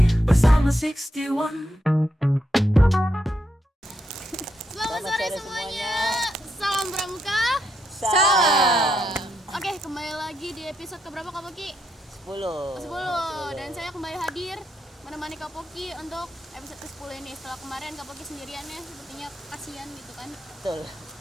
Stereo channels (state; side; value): normal; both; correlation 0.81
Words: bersama 61. Selamat sore semuanya. Salam Pramuka. Salam. Oke, kembali lagi di episode keberapa Kak Poki? 10. 10. Dan saya kembali hadir menemani Kak Poki untuk episode ke-10 ini. Setelah kemarin Kak Poki sendiriannya sepertinya kasihan gitu kan. Betul.